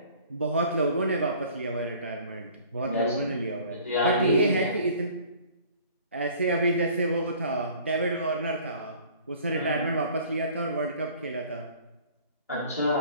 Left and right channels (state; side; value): inverted; both; correlation -0.51